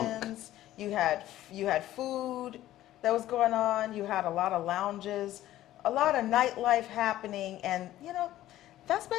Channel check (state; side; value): quieter; right; 14.1 dB